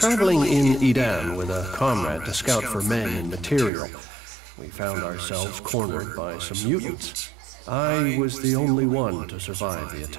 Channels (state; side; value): drops out; left; at 3.7 s